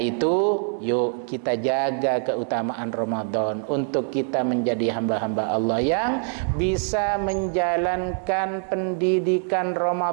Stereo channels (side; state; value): left; silent; 62 dB below the other